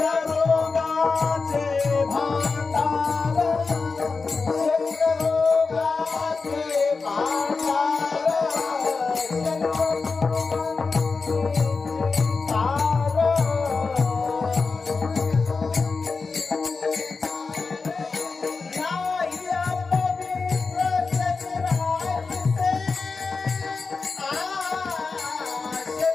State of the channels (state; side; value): quieter; right; 4.4 dB